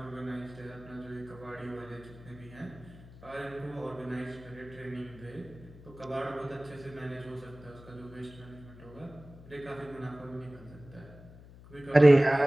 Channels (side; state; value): left; noise; hum, 19 dB below the sound